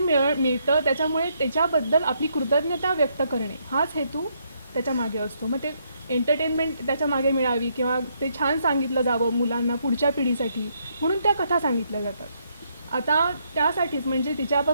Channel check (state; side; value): inverted; both; correlation -0.75